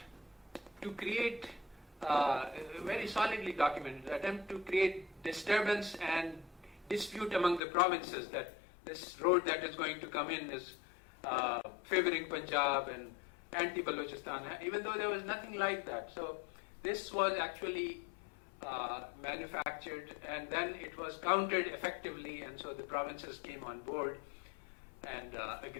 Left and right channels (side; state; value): right; drops out; at 7.6 s